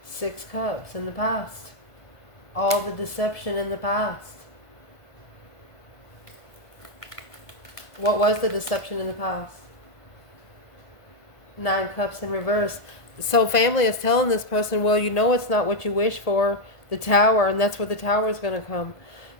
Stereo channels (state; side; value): late; right; 1.5 ms